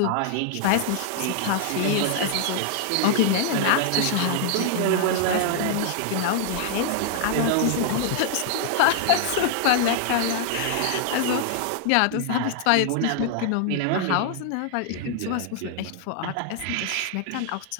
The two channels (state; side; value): different; both; correlation 0.00